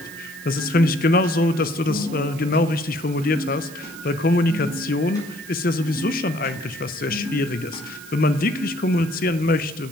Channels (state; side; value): noise; right; hiss, 18 dB below the sound